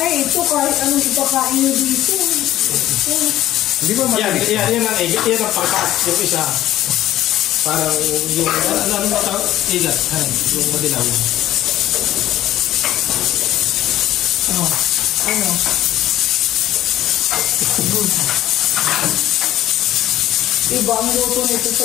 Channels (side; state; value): right; quieter; 13.8 dB